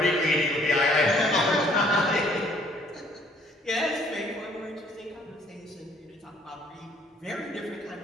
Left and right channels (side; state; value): both; normal; correlation 0.61